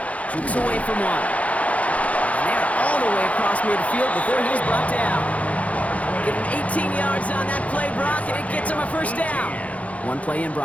Jukes away from one. And they're all the way across midfield before he's brought down. Get him 18 yards on that play, Brock, and it gets him a first down. One play in,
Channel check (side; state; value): right; late; 0.067 ms